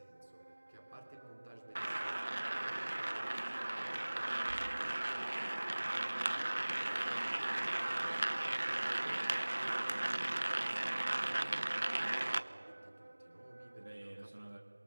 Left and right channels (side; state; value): both; inverted; correlation -1.00